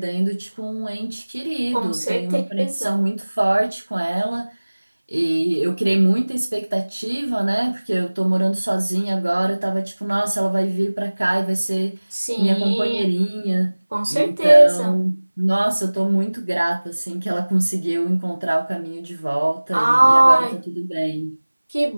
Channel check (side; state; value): both; inverted; correlation -1.00